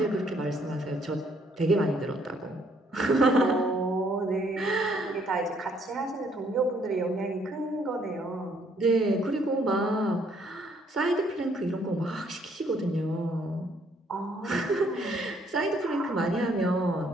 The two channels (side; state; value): both; normal; correlation 0.67